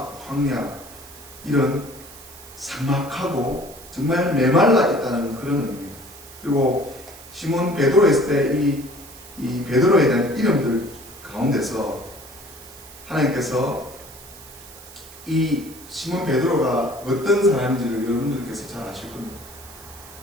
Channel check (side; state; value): right; noise; hiss, 18 dB below the sound